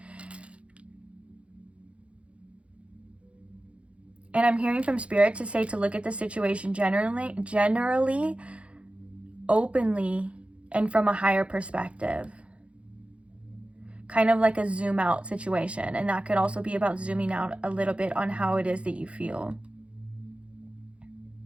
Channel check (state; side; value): late; left; 0.061 ms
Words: And I'm hearing from Spirit to say to look at the situation generally, openly, and from a higher perspective. Kind of like a zoom out situation. And that could also be about zooming out a little bit on how it is that you feel.